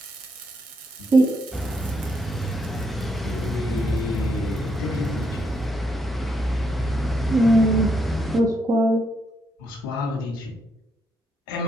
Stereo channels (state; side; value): normal; both; correlation 0.77